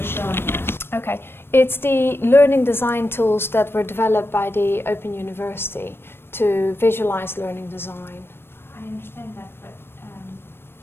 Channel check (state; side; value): late; right; 0.11 ms